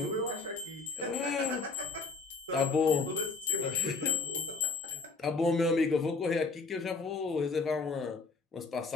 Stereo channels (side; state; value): right; quieter; 4.1 dB